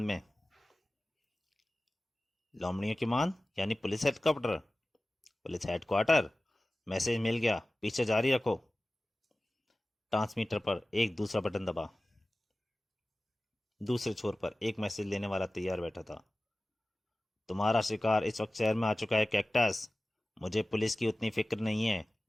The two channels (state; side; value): normal; both; correlation 0.97